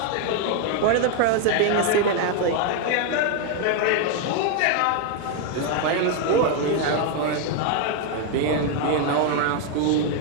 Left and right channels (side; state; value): both; different; correlation 0.00